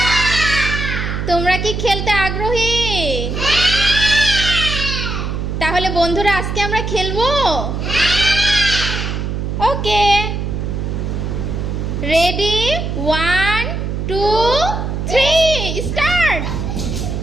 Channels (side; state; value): right; noise; hum, 3 dB below the sound